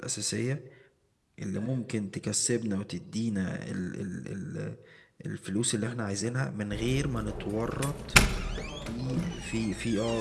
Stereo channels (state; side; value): identical; both; correlation 1.00